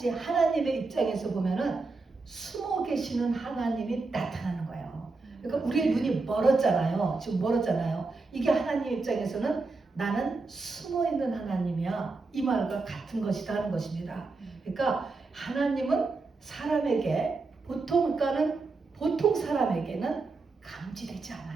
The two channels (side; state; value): left; quieter; 3.8 dB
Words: 하나님의 입장에서 보면은 숨어 계시는 하나님이 나타나는 거예요. 그러니까 우리의 눈이 멀었잖아요. 지금 멀었잖아요. 이게 하나님 입장에서는 나는 숨어 있는 하나님이야. 이 말과 같은 것이다 하는 것입니다. 그러니까 하나님은 사람에게 보통 사람에게는 감지되지